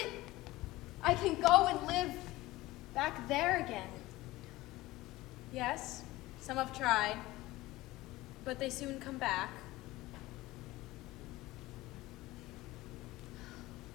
I can go and live back there again. Yes, some have tried, but they soon come back.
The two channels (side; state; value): right; quieter; 18.6 dB